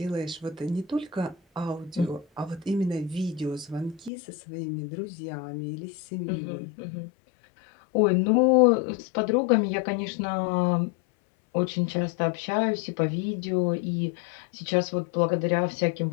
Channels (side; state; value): right; drops out; at 4.1 s